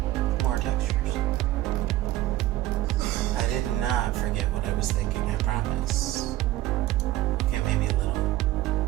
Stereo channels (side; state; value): left; quieter; 15.6 dB